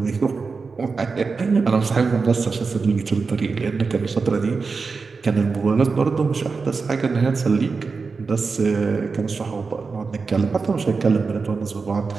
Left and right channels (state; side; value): quieter; left; 4.6 dB